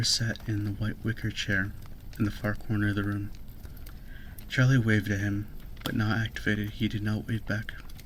sat in the white wicker chair in the far corner of the room. Charlie waved at him, but not activated, he did not wave back.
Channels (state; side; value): identical; both; correlation 1.00